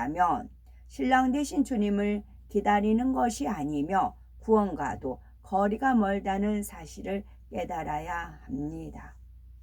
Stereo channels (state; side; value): identical; both; correlation 1.00